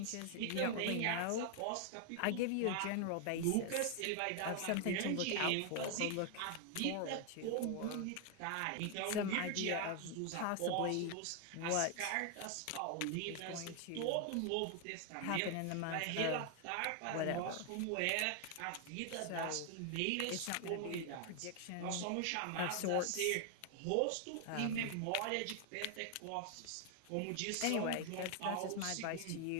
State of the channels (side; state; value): both; different; correlation 0.00